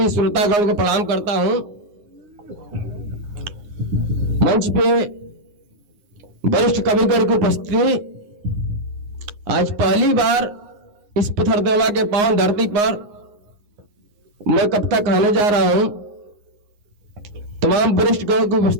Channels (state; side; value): late; left; 9.7 ms